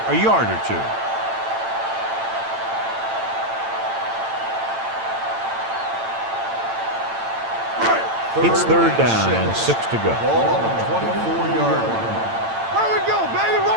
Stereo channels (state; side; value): late; left; 8.9 ms